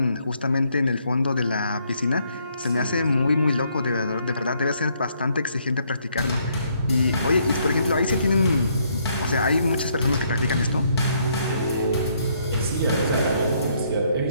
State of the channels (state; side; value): inverted; both; correlation -0.70